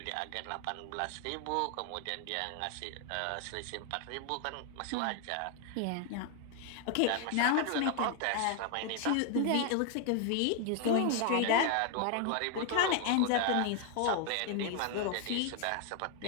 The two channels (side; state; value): both; different; correlation 0.00